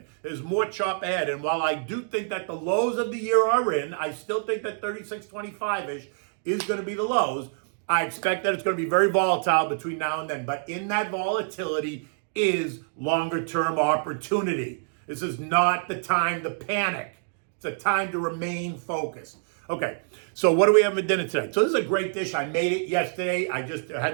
There's more chop ahead. And while I do think that the lows of the year are in, I still think that 36.25-ish is going to be the lows. I expect that it's going to be very volatile between now and then. But in that volatility is longer-term opportunity. This is not the time to panic. It's a time to remain focused. Okay, so what do we have for dinner today? So this is a great dish. I made it yesterday. I just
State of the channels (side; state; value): left; silent; digital silence